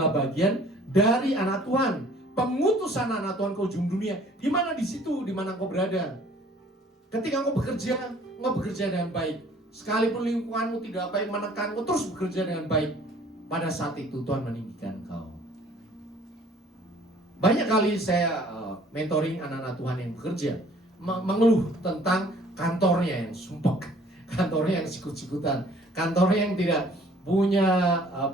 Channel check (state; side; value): normal; both; correlation 0.55